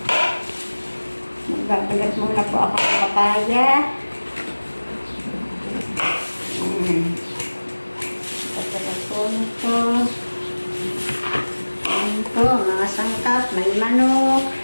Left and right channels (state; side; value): inverted; both; correlation -1.00